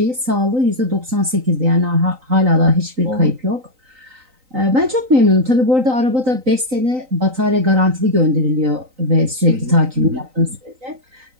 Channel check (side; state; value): left; late; 3.9 ms